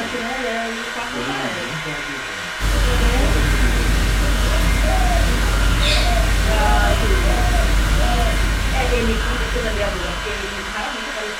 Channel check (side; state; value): both; identical; correlation 1.00